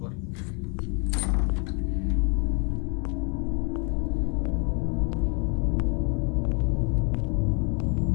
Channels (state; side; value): quieter; right; 36.1 dB